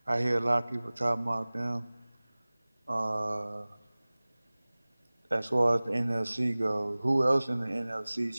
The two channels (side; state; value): both; inverted; correlation -1.00